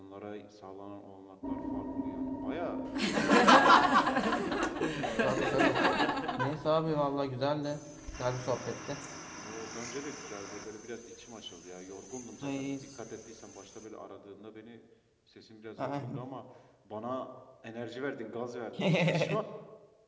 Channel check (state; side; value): identical; both; correlation 1.00